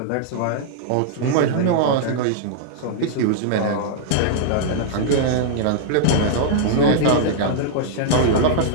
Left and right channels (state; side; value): different; both; correlation -0.01